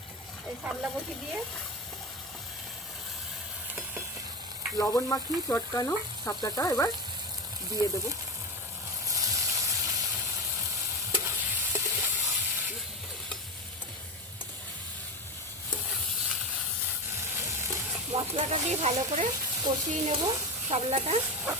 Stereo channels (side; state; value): both; normal; correlation 0.21